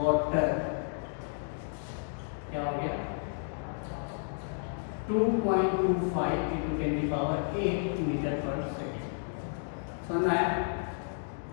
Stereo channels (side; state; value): right; silent; digital silence